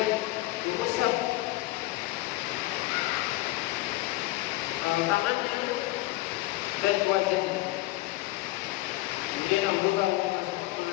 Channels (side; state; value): right; quieter; 19.0 dB